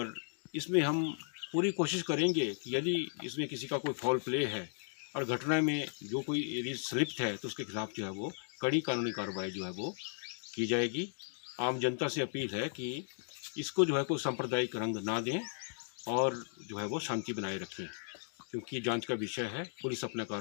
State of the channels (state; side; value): silent; right; 54 dB below the other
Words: इसमें हम पूरी कोशिश करेंगे कि यदि इसमें किसी का कोई फॉल प्ले है और घटना में जो कोई यदि संलिप्त है तो उसके खिलाफ जो है वो कड़ी कानूनी कार्रवाई जो है वो की जाएगी। आम जनता से अपील है कि इसको जो है कोई सांप्रदायिक रंग ना दें और जो है वो शांति बनाए रखें, क्योंकि जांच का विषय है। पुलिस अपना